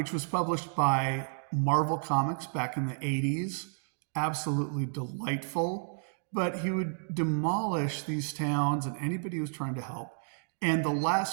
was published by Marvel Comics back in the 80s, absolutely delightful, but he would demolish these towns and anybody who was trying to help. And the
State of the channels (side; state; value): left; silent; digital silence